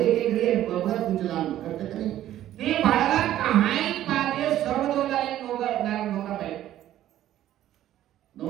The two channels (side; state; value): left; quieter; 12.8 dB